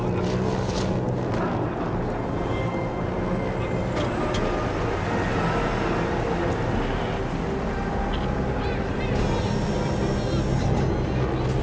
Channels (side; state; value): both; identical; correlation 1.00